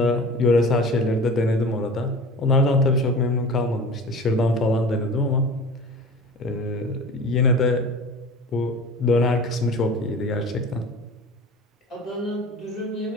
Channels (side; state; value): both; normal; correlation 0.38